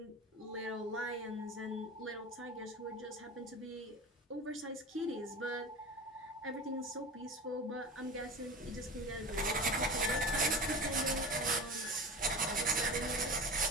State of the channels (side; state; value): both; normal; correlation 0.32